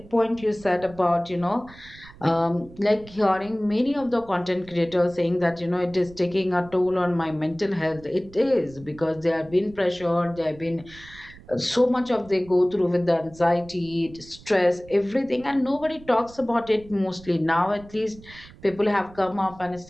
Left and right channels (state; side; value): noise; right; rumble, 21 dB below the sound